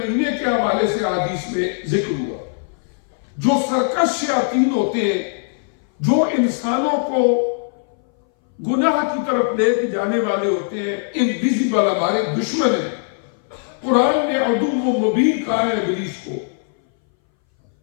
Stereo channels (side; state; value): right; silent; 61 dB below the other